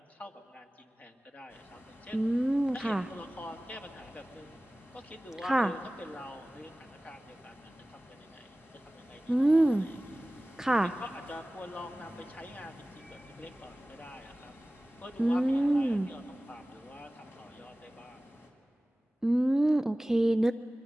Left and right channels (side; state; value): both; normal; correlation 0.97